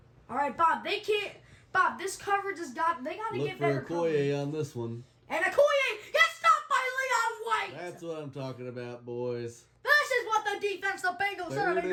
All right, Bob, they can't. Bob, this coverage has got. They got to Look get for better coverage. Okoye on this one. And Okoye gets stopped by Leon White. That's what I'm talking about, boys. This is what the defense, the Bengals, should have 3rd been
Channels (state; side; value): identical; both; correlation 1.00